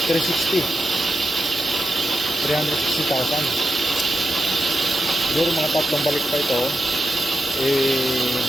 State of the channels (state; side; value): normal; both; correlation 0.88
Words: 360. 360,000. Siguro mga tatlong balik pa ito.